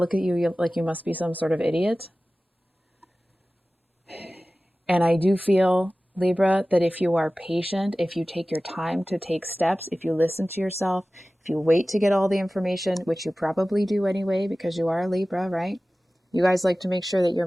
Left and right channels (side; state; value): both; normal; correlation 0.97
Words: at you like you must be some sort of idiot. And I do feel, Libra, that if you are patient, if you take your time to take steps, if you listen to yourself, if you wait to get all the information, which you probably do anyway, because you are a Libra, right? You guys like to make sure that you're